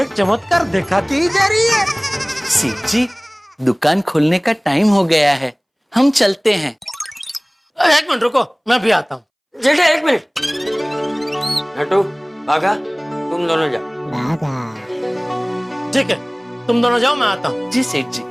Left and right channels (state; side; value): identical; both; correlation 1.00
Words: चमत्कार दिखाती ही जा रही है। सेठ जी, दुकान खोलने का टाइम हो गया है, हम चलते हैं। एक मिनट रुको, मैं भी आता हूँ। जेठा एक मिनट। नटू भागा, तुम दोनों जाओ। ठीक है, तुम दोनों जाओ, मैं आता हूँ। जी सेठ जी,